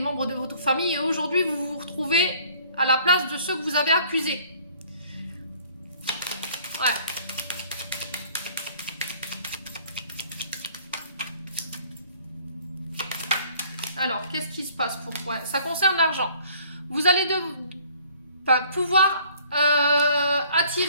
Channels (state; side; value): inverted; both; correlation -0.56